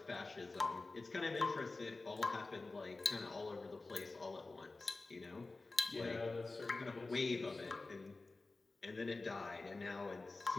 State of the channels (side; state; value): right; quieter; 3.5 dB